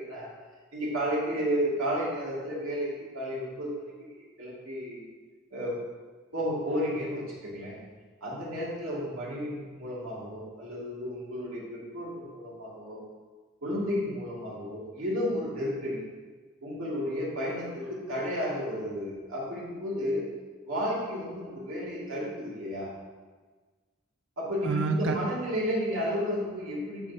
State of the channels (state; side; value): normal; both; correlation 0.35